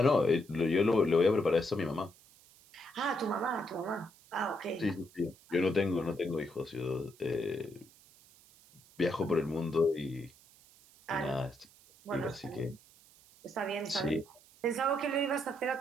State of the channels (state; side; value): noise; right; hiss, 26 dB below the sound